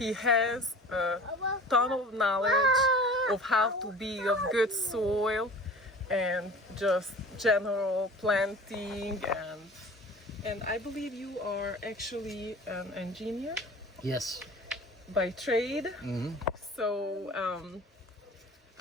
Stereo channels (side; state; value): both; normal; correlation 0.41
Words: has a ton of knowledge of how to be of good soil and just general planting, and I believe you are actually an engineer Yes. by trade. Hmm. So